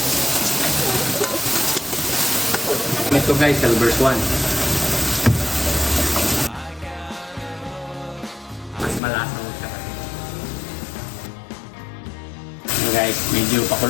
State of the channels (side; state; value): right; drops out; at 9.0 s